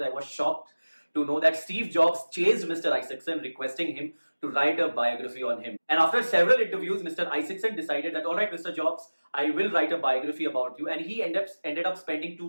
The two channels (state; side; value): inverted; both; correlation -1.00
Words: I was shocked to know that Steve Jobs chased Mr. Isaacson, requesting him to write a biography on him. And after several interviews, Mr. Isaacson decided that, all right, Mr. Jobs, I will write a biography about you. And he ended up spending